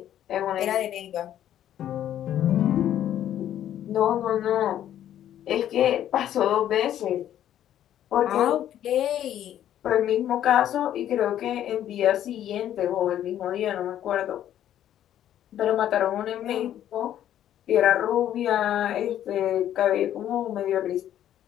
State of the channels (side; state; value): right; quieter; 11.3 dB